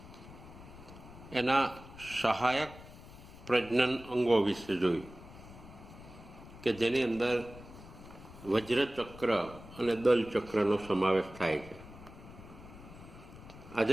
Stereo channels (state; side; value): noise; left; rumble, 17 dB below the sound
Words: એના સહાયક પ્રજનન અંગો વિશે જોયું કે જેની અંદર વજ્રચક્ર અને દલચક્રનો સમાવેશ થાય છે.